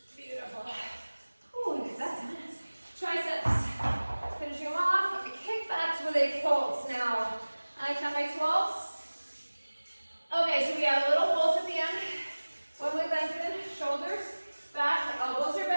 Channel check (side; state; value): both; inverted; correlation -1.00